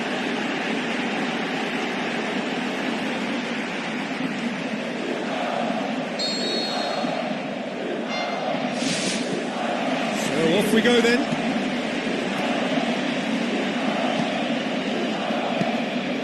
So off we go then.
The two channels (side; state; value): both; identical; correlation 1.00